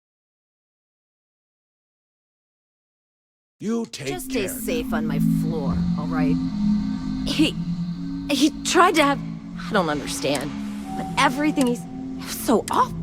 You take Just stay care. safe on my floor, all right? He tried to have... I don't understand. But everything he's... It was so off.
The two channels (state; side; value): identical; both; correlation 1.00